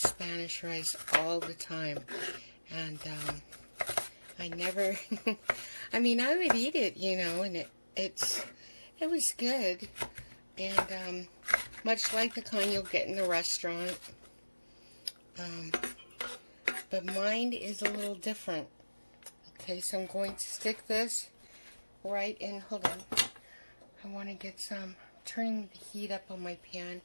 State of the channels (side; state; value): both; inverted; correlation -1.00